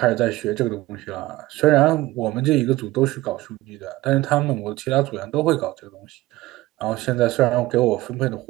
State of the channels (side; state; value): left; quieter; 18.1 dB